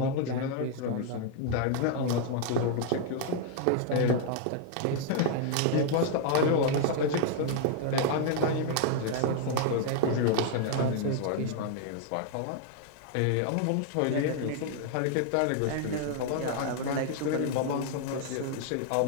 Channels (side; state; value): both; different; correlation 0.00